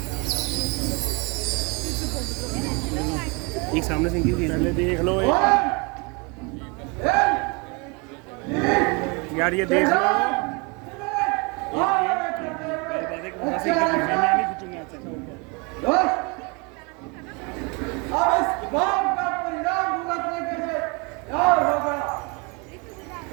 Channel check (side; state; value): left; quieter; 30.0 dB